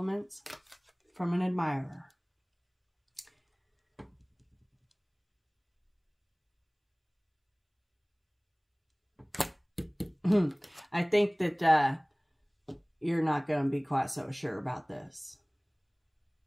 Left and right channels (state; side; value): identical; both; correlation 1.00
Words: from an admirer. I think that you're not going to be quite so sure about this.